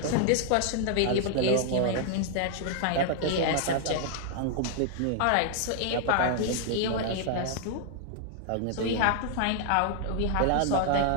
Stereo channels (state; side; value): different; both; correlation 0.00